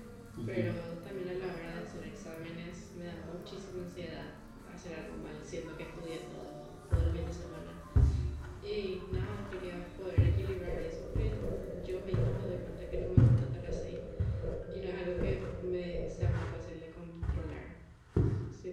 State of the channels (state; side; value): identical; both; correlation 1.00